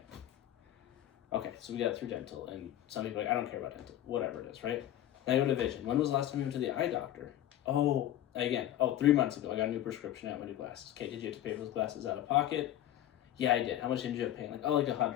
Okay, so we got through dental, and some people are like, I don't care about dental, whatever it is, right? Now I go to vision. When was the last time you went to the eye doctor? 3 months ago, I got a new prescription, I got my new glasses. Okay, did you have to pay for those glasses out of pocket? Yeah, I did. How much did you have paying? Like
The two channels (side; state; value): right; quieter; 12.4 dB